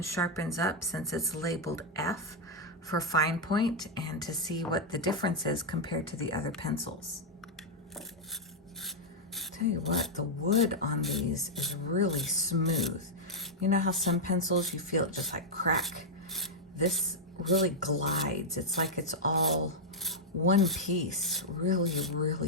sharpens up since it's labeled F for fine point, and to see what the difference is compared to the other pencils. Tell you what, the wood on these is really smooth. You know how some pencils you feel it just like crack? This really glides. It's like it's all one piece, really,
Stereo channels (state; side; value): normal; both; correlation -0.02